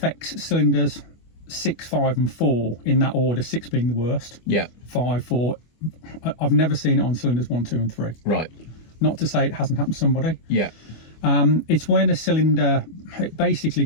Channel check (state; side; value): late; right; 25 ms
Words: cylinders 6, 5 and 4 in that order, 6 being the worst, Yeah. 5, 4. I've never seen it on cylinders 1, 2 and 3. Right. Not to say it hasn't happened to somebody. Yeah. It's when a cylinder, it basically